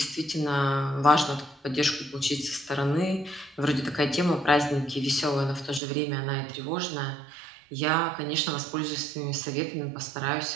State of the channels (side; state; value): left; drops out; at 5.8 s